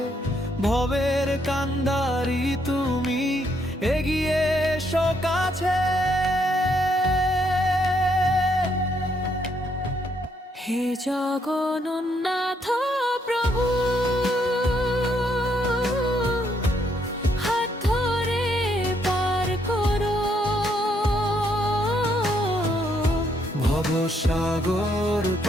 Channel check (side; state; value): both; normal; correlation 0.73